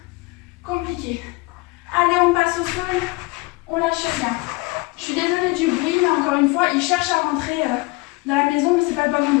compliqué. Allez, on passe au sol. On lâche rien. Je suis désolée du bruit, mais encore une fois, il cherche à rentrer dans la maison, mais c'est pas le bon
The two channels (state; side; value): quieter; right; 24.5 dB